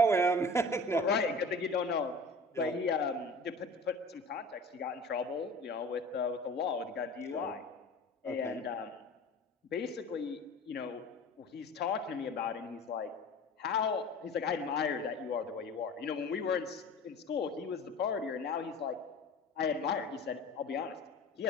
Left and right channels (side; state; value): both; normal; correlation 0.40